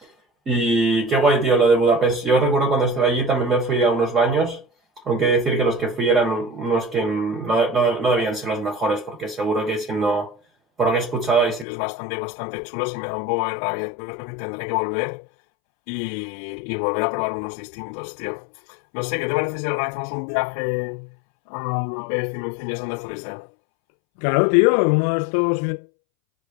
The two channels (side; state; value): right; drops out; at 11.7 s